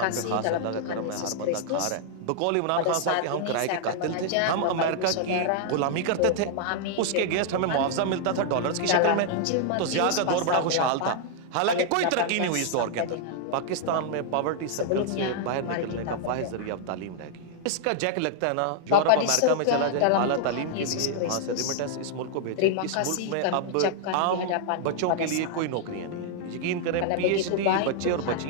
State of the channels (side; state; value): both; different; correlation -0.01